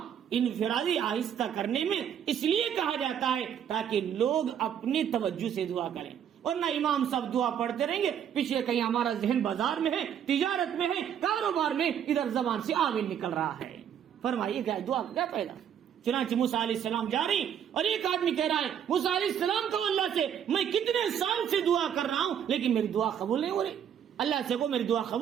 انفرادی آہستہ کرنے میں اس لیے کہا جاتا ہے تاکہ لوگ اپنی توجہ سے دعا کریں، ورنہ امام صاحب دعا پڑھتے رہیں گے، پیچھے کہیں ہمارا ذہن بازار میں ہے، تجارت میں ہے، کاروبار میں، ادھر زبان سے آمین نکل رہا ہے۔ فرمائیے کیا دعا کا کیا فائدہ؟ چنانچہ موسیٰ علیہ السلام جا رہی اور ایک آدمی کہہ رہا ہے موسیٰ علیہ السلام کو اللہ سے میں کتنے سال سے دعا کر رہا ہوں لیکن میری دعا قبول نہیں ہو رہی، اللہ سے کو میری دعا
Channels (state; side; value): quieter; left; 9.0 dB